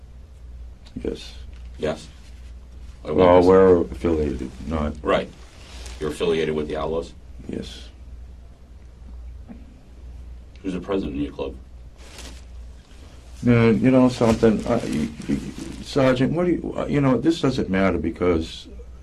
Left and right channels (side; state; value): both; identical; correlation 1.00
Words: Yes. Yes. Well, we're affiliated, not... Right. You're affiliated with the Outlaws? Yes. Who's the president of your club? You know something, Sergeant, what do you, this doesn't matter because,